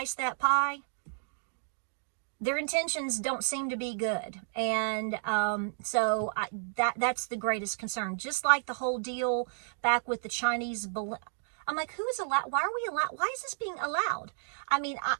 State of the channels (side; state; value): left; silent; digital silence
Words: that pie, their intentions don't seem to be good. And so that's the greatest concern. Just like the whole deal back with the Chinese balloon. I'm like, who is allowed? Why are we allowed? Why is this being allowed? I mean,